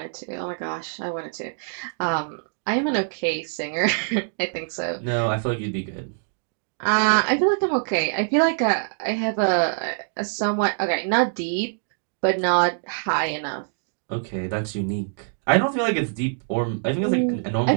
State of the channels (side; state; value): left; silent; digital silence